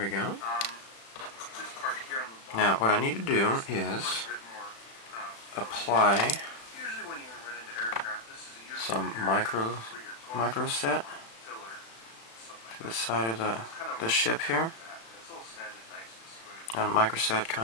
go. Now, what I need to do is apply some micro set to the side of the ship here. And microset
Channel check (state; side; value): late; right; 36 ms